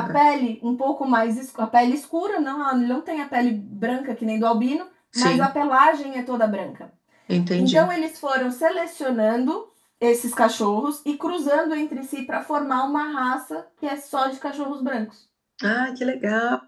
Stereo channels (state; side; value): identical; both; correlation 1.00